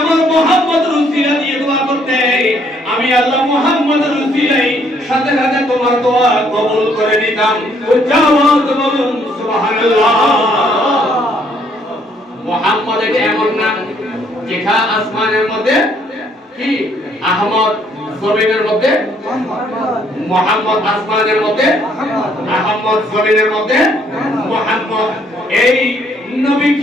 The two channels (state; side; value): normal; both; correlation 0.67